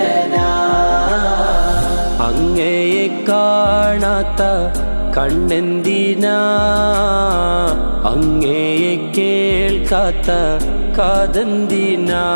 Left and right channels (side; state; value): both; inverted; correlation -1.00